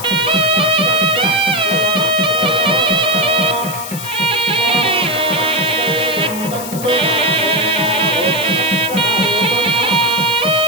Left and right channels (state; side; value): noise; left; hiss, 10 dB below the sound